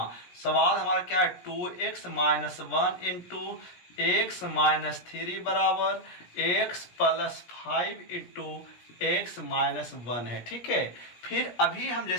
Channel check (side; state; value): right; late; 17 ms